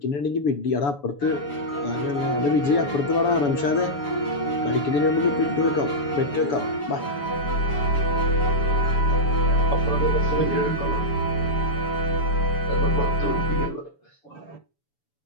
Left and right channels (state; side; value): late; right; 7.0 ms